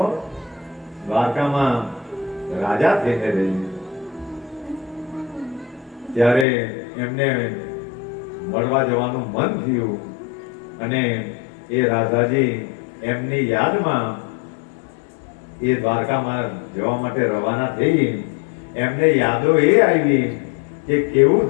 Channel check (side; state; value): right; drops out; at 6.5 s